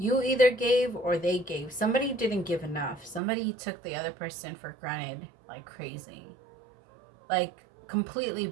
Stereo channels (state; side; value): drops out; left; at 3.2 s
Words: either gave or they gave. Somebody didn't give enough. Somebody took the other person for granted like crazy. Like, completely